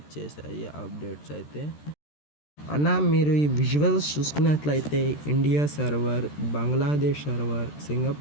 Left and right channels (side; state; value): right; late; 13 ms